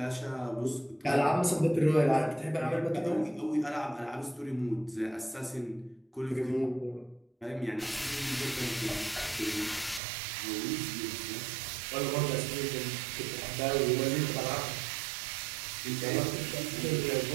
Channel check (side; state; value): left; drops out; at 10.0 s